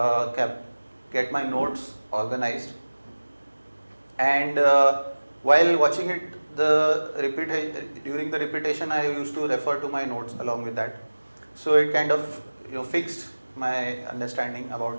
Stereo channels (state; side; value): inverted; both; correlation -1.00